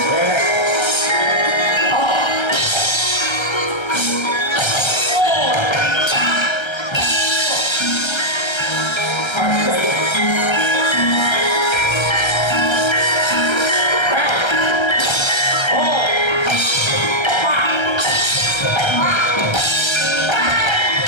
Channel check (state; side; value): late; right; 1.3 ms